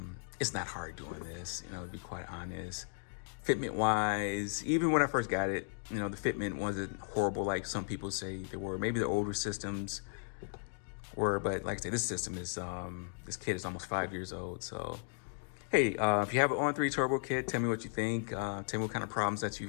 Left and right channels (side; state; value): right; silent; digital silence